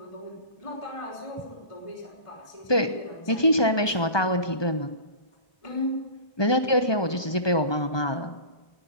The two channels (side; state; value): right; late; 1.2 ms